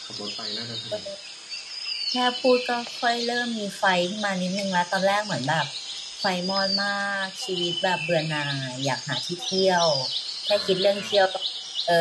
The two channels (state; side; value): identical; both; correlation 1.00